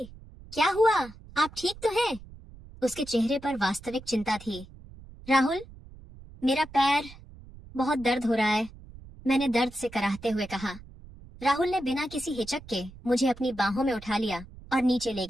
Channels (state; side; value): noise; right; rumble, 18 dB below the sound